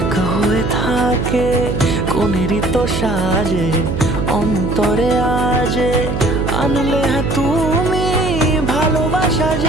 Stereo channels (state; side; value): noise; right; hum, 3 dB below the sound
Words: হয়ে থাকে। কোনেরই তো সাজে অন্তরে আজে, আনলে হ্যাঁ তুমি ভালোবাসা